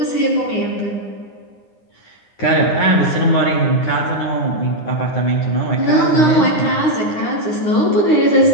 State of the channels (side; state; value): right; late; 9.8 ms